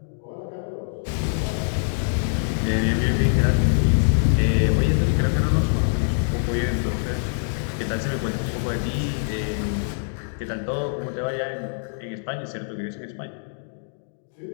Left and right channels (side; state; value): right; silent; digital silence